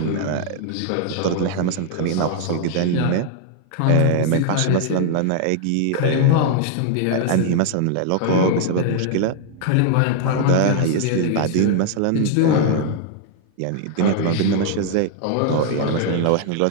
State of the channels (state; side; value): different; both; correlation 0.00